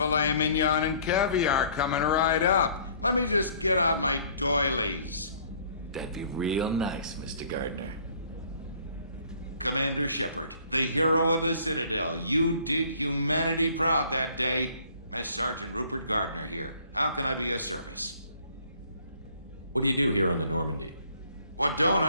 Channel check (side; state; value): both; inverted; correlation -0.57